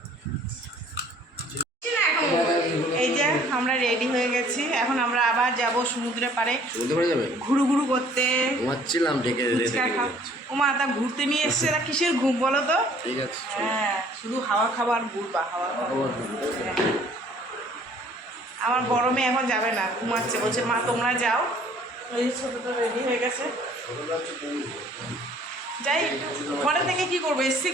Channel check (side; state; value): both; normal; correlation 0.56